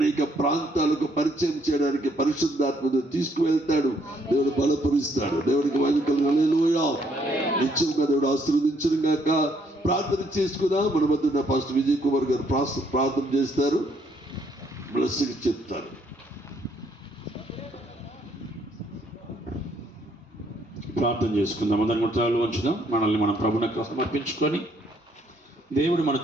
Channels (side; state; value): both; normal; correlation 0.69